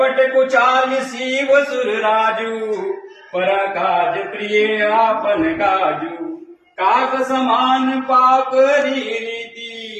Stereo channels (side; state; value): both; identical; correlation 1.00